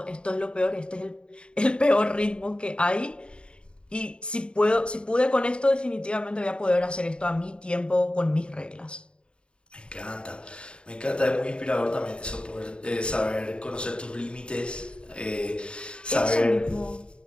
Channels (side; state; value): right; late; 0.053 ms